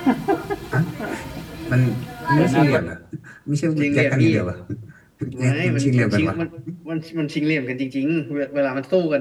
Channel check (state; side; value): identical; both; correlation 1.00